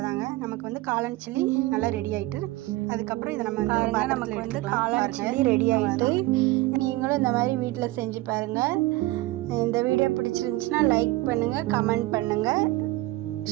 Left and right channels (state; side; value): quieter; left; 19.0 dB